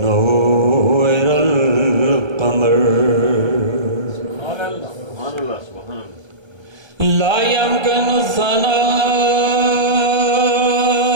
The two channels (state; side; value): late; left; 1.3 ms